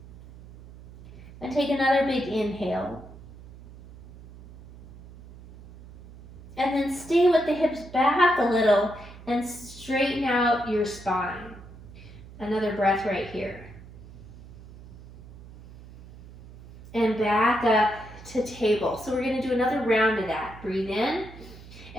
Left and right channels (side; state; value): right; noise; hum, 18 dB below the sound